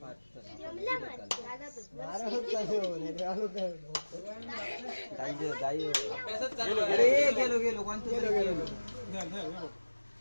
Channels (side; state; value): both; inverted; correlation -1.00